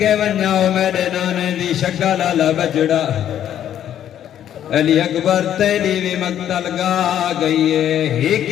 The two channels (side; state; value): right; quieter; 10.6 dB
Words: ونجاؤ میرے نانے دی شکل والا بچڑا علی اکبر تیلی بھی مقتل گا گئی ہے ایک